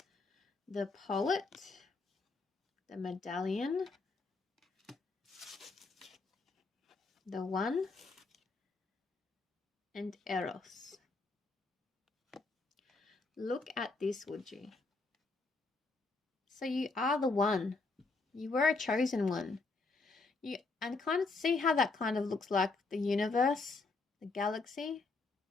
The Poet, the Medallion, the One, and Eros. Look at this, would you? So you are the one. You were a chosen one. And kind of see how that kind of looks like the universe, the galaxy.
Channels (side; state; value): right; quieter; 3.8 dB